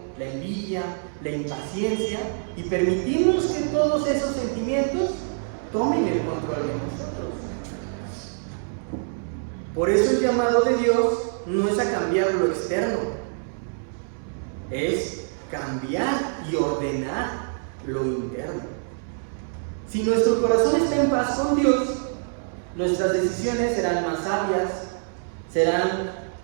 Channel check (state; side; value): silent; left; 61 dB below the other